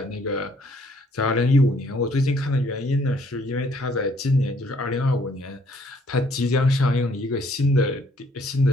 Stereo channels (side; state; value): both; normal; correlation 0.64